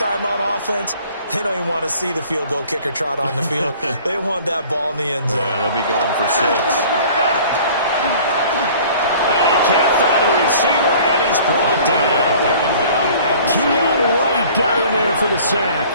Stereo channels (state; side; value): inverted; both; correlation -0.50